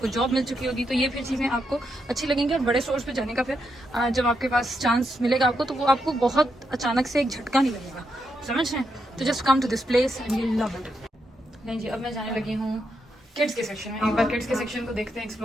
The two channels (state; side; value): normal; both; correlation 0.82